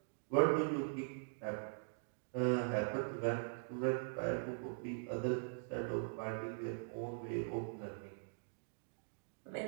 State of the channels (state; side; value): silent; left; digital silence